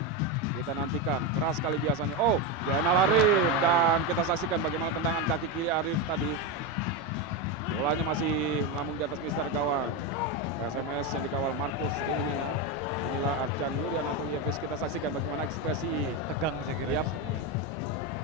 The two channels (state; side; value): normal; both; correlation 0.11